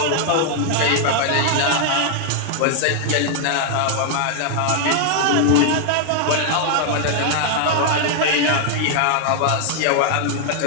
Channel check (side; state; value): both; different; correlation 0.00